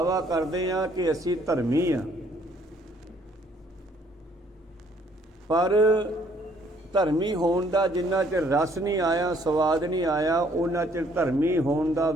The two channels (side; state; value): both; normal; correlation 0.64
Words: ਕਰਦੇ ਹਾਂ ਕਿ ਅਸੀਂ ਧਰਮੀ ਹਾਂ, ਪਰ ਧਰਮੀ ਹੋਣ ਦਾ ਜਿੰਨਾ ਚਿਰ ਰਸ ਨਹੀਂ ਆਇਆ, ਸਵਾਦ ਨਹੀਂ ਆਇਆ, ਉਹਨਾਂ ਚਿਰ ਧਰਮੀ ਹੋਣ ਦਾ